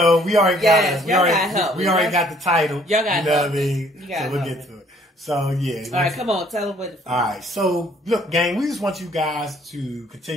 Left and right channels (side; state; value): both; normal; correlation 0.61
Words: we already got it. We already got the title. Y'all got what I mean? So we'll get to it. So, yeah. All right, come on. Tell them what. All right. So, look, gang, we just want you guys to